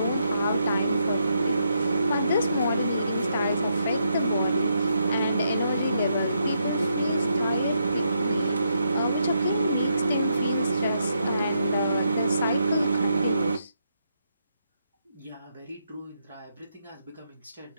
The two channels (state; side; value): inverted; both; correlation -0.79